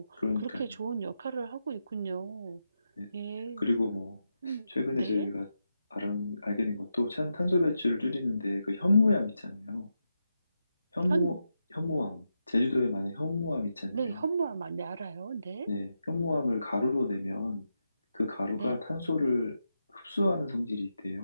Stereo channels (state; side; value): inverted; both; correlation -0.86